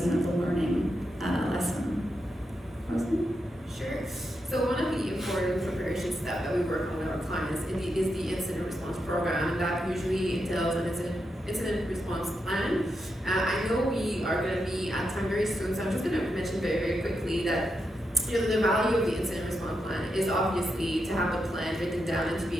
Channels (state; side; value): normal; both; correlation 0.85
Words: the learning lesson. Rosie? Sure. So one of the important preparation steps that we work on with our clients is the incident response program, and that usually entails an incident response plan. I know we are going to be at time very soon, so I'm just going to mention very, very quickly that the value of the incident response plan is obviously to have the plan written down and to